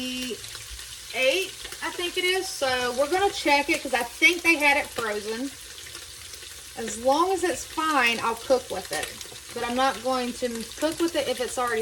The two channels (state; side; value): identical; both; correlation 1.00